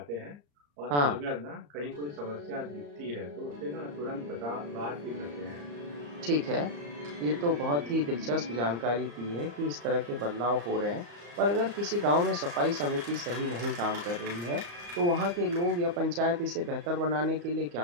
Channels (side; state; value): left; late; 34 ms